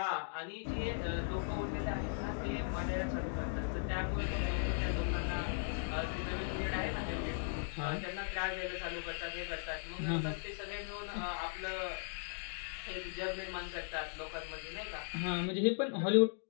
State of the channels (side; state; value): right; silent; digital silence